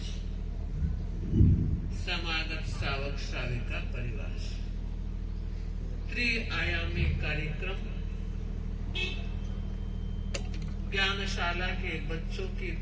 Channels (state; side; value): identical; both; correlation 1.00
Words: समागत श्रावक श्राविका परिवार, त्रिआयामी कार्यक्रम ज्ञानशाला के बच्चों की